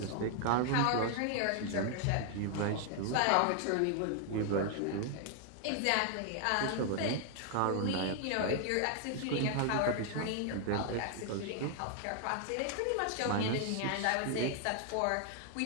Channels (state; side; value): different; both; correlation 0.00